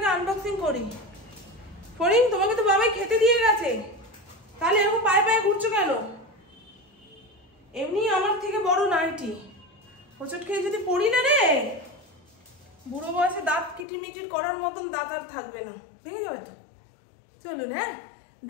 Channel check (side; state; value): right; drops out; at 13.9 s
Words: আনবক্সিং করি। ফরিং, তোমাকে তো বাবাই খেতে দিয়ে গেছে, তাহলে এরকম পায়ে পায়ে ঘুরছো কেন? এমনি আমার থেকে বড় নাইটি, হোঁচট খেয়ে যদি পড়ি না রে, বুড়ো বয়সে দাঁত কিটিমিটির করার মতন দাঁত আর থাকবে না, ভেঙে যাবে তো। চলুন হ্যাঁ